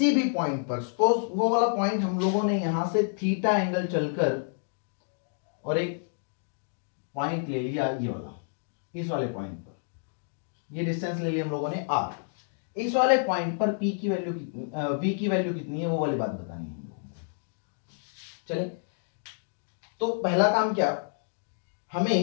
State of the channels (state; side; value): silent; right; digital silence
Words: भी पॉइंट पर, सपोज वो वाला पॉइंट हम लोगों ने यहां से थीटा एंगल चलकर और एक पॉइंट ले लिया, ये वाला, इस वाले पॉइंट पर ये डिस्टेंस ले लिया हम लोगों ने R। इस वाले पॉइंट पर P की वैल्यू कितनी, V की वैल्यू कितनी है, वो वाली बात बतानी है हम लोगों को। चले, तो पहला काम क्या,